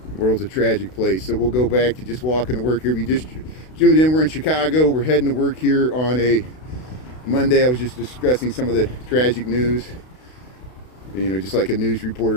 world's a tragic place. So we'll go back to just walking to work here. If you just tuned in, we're in Chicago. We're heading to work here on a Monday. I was just discussing some of the tragic news. You know, just like a news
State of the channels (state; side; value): late; right; 32 ms